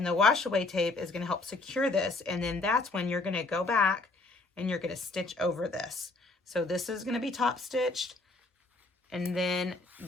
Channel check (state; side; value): quieter; right; 3.2 dB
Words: the wash away tape is going to help secure this, and then that's when you're going to go back and you're going to stitch over this. So this is going to be top stitched, and then